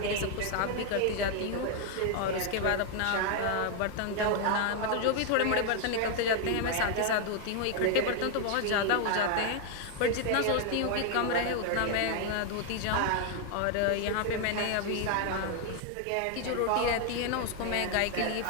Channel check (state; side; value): different; both; correlation 0.00